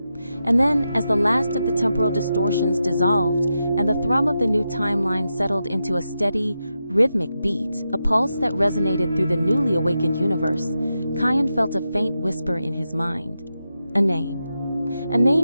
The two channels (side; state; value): both; inverted; correlation -0.88